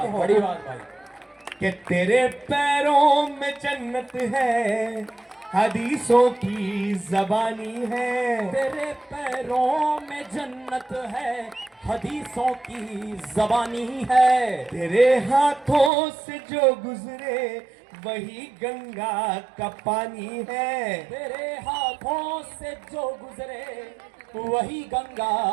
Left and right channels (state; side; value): drops out; left; at 15.9 s